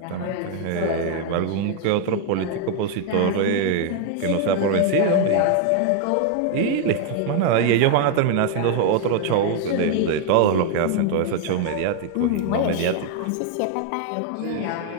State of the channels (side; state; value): both; different; correlation 0.00